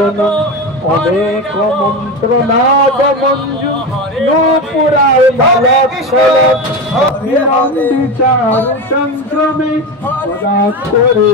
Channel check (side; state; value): both; normal; correlation 0.21